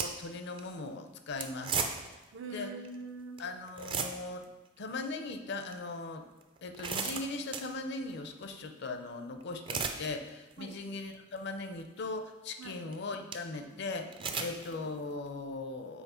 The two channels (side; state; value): both; normal; correlation 0.09